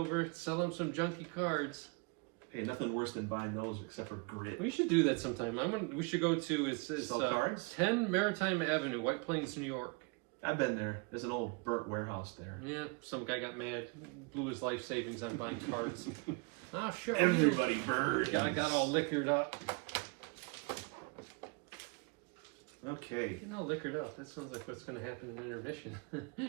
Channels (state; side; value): quieter; left; 30.6 dB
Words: sell them some junky cards. Hey, nothing worse than buying those except for grit. We should do that sometime. We should go to it's Sell cards? 10 Maritime Avenue, White Plains, New York. I've been there. There's an old burnt warehouse there. Yeah, some guy got mad, blew his life savings on buying cards. Oh, sure. Everybody burns. Guy got all liquored up. Okay. Getting all liquored up. That sounds like what's going to happen in intermission.